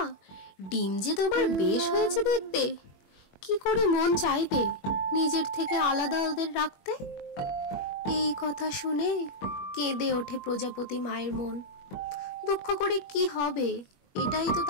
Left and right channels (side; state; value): right; late; 21 ms